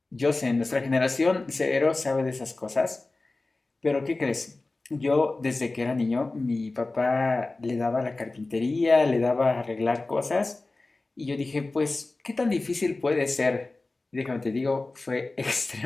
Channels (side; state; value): right; quieter; 3.2 dB